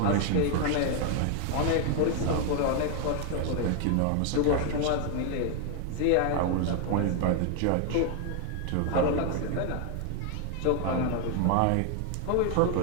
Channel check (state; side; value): different; both; correlation 0.00